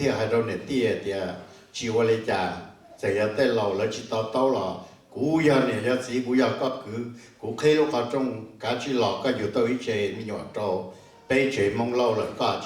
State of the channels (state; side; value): identical; both; correlation 1.00